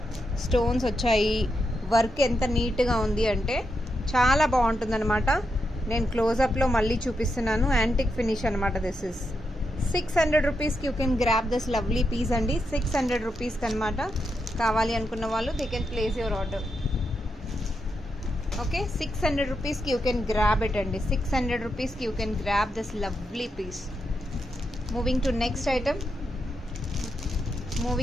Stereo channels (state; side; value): normal; both; correlation 0.85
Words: స్టోన్స్ వచ్చాయి, వర్క్ ఎంత నీట్గా ఉంది అంటే చాలా బాగుంటుంది అనమాట. నేను క్లోజప్లో మళ్ళీ చూపిస్తున్నాను. యాంటిక్ ఫినిష్ అనమాట. దిస్ ఇస్ 600 రూపీస్కి you can grab this lovely piece అండి. 600 రూపీస్కి అనమాట. కావాలి అనుకున్న వాళ్ళు they can place your order. Okay, 600 రూపీస్కి యూ కెన్ గ్రాబ్ ఇట్ అండి. 600 రూపీస్కి you can grab this lovely piece. Moving to next